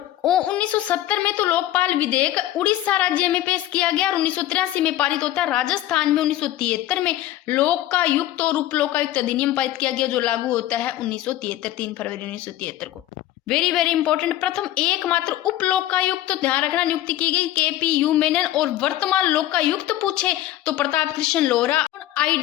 1970 में तो लोकपाल विधेयक उड़ीसा राज्य में पेश किया गया, और 1983 में पारित होता है। राजस्थान में 1973 में लोकायुक्त और उप लोकायुक्त अधिनियम पारित किया गया, जो लागू होता है 1973, 3 फरवरी 1973 को। वेरी वेरी इंपॉर्टेंट, प्रथम एकमात्र उप लोकायुक्त, तो ध्यान रखना, नियुक्ति की गई KPU मेनन। और वर्तमान लोकायुक्त पूछे तो प्रताप कृष्ण लोहरा,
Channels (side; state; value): right; quieter; 14.0 dB